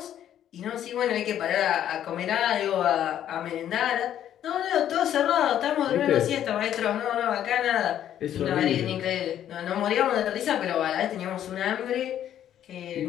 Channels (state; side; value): quieter; right; 10.8 dB